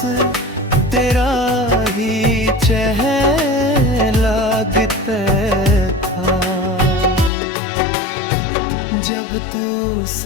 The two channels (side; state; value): right; drops out; at 7.3 s